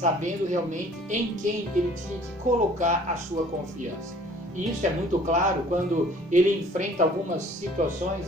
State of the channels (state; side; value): normal; both; correlation 0.53